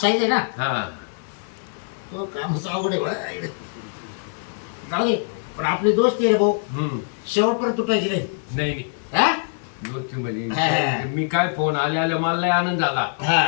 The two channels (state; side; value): silent; right; digital silence